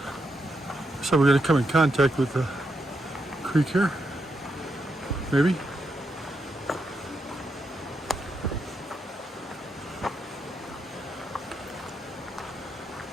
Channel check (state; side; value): normal; both; correlation 0.82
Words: So we're going to come in contact with the creek here, maybe.